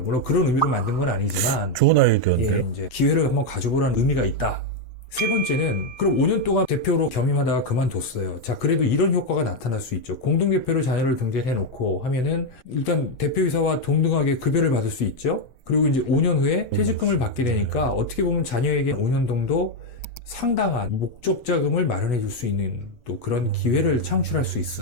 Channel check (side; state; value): right; late; 6.3 ms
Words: 물론 그런 의미로 만든 건 아니지만. 좋은 아이디어인데. 예, 이제 기회를 한번 가져보라는 의미가 있다. 세 번째는 그럼 5년 동안 대표로 겸임하다가 그만뒀어요. 자, 그래도 이런 효과가 나타날 수 있죠. 공동대표로 자녀를 등재해놓고 하면은 일단 대표이사와 동등하게 급여를 받을 수 있죠. 그리고 이제 5년 후에 퇴직금을 받게 되니까 어떻게 보면 자녀에게 5년 정도 상당한 목적 자금을 마련해 줄 수 있는 또 그런 기회를 창출할 수